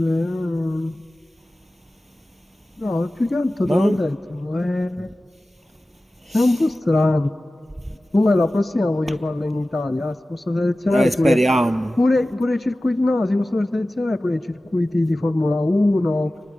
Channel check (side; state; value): both; normal; correlation 0.96